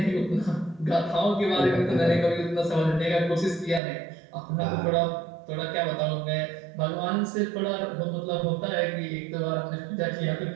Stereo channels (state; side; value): drops out; left; at 3.8 s